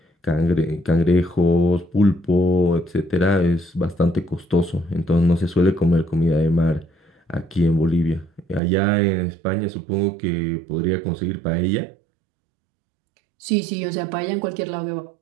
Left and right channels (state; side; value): drops out; left; at 8.6 s